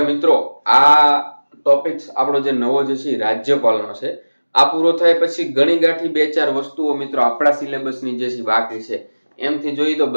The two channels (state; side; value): inverted; both; correlation -1.00